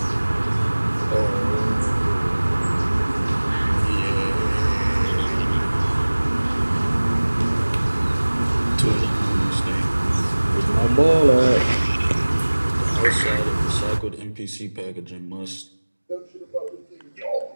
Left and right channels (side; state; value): both; inverted; correlation -1.00